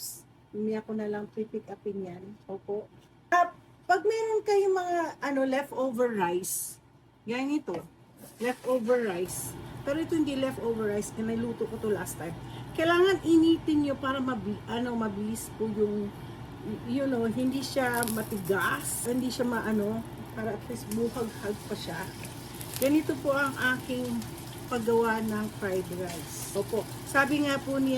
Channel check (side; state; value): both; identical; correlation 1.00